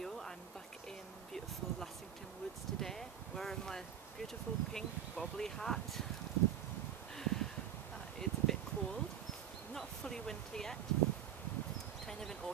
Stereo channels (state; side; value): quieter; left; 9.8 dB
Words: I'm back in beautiful Lassington Woods today, wearing my beautiful pink bobbly hat. It's a bit cold, not fully winter yet, kind of in